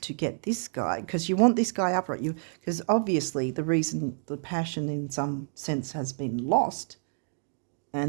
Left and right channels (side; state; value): left; silent; digital silence